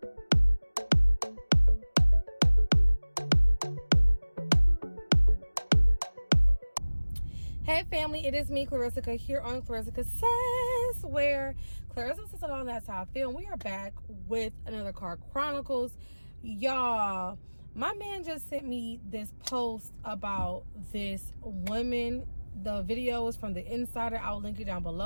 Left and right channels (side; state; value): both; inverted; correlation -1.00